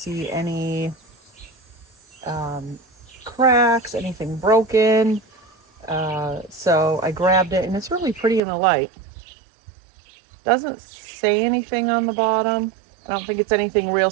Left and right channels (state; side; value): drops out; left; at 8.4 s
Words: any cracks, anything broken. So I grabbed it, and it's really pretty in the light. Doesn't say anything on the bottom. I don't think it's anything real